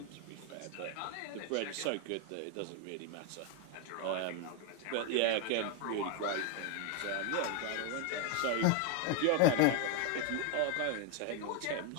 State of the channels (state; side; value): different; both; correlation 0.01